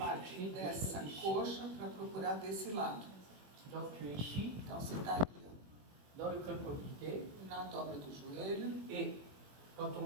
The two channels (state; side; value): late; left; 21 ms